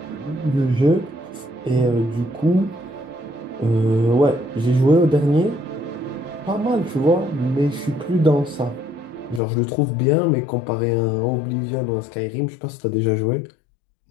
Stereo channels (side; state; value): right; drops out; at 9.4 s